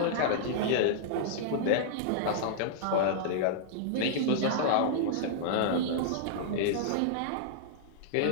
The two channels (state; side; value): different; both; correlation -0.02